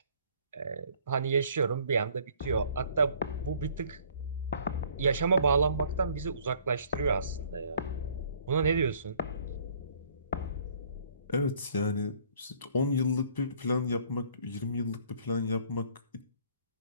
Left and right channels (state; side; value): inverted; both; correlation -0.58